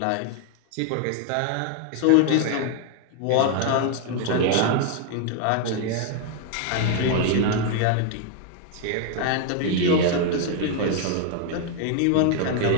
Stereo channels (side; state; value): both; different; correlation 0.00